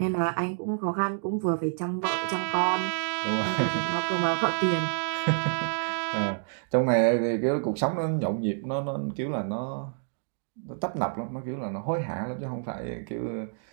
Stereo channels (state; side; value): silent; left; digital silence